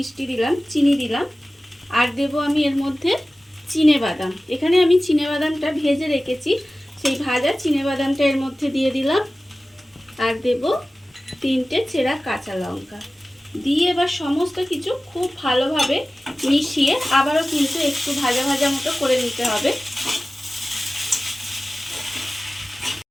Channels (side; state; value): both; normal; correlation 0.97